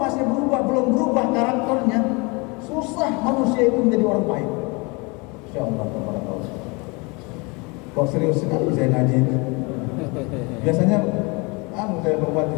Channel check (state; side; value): quieter; right; 28.5 dB